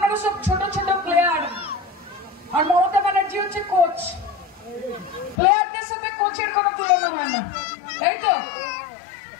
সব ছোট ছোট প্লেয়ার, আর মমতা ব্যানার্জি হচ্ছে কোচ। প্লেয়ারদের সাথে কোচের কোনো তুলনা হয় না, তাই তো?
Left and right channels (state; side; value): drops out; right; at 5.4 s